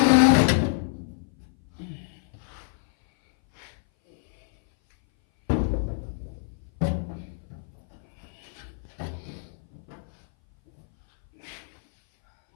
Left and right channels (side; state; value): right; silent; 58 dB below the other